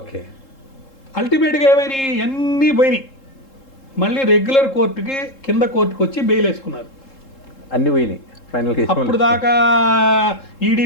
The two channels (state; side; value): late; right; 3.7 ms